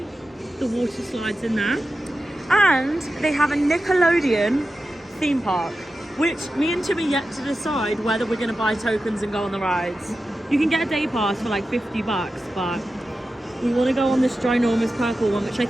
the water slides in there. And they have a Nickelodeon theme park, which me and Tim are yet to decide whether we're going to buy tokens and go on the rides. You can get a day pass for like $50, but we want to go on this ginormous purple one, which I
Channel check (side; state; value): both; normal; correlation 0.92